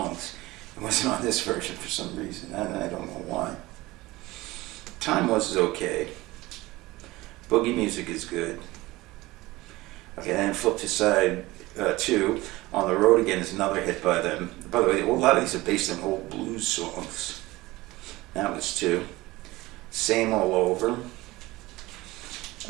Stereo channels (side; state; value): left; quieter; 19.6 dB